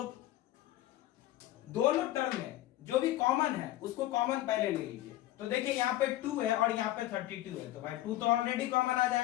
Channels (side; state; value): right; quieter; 15.1 dB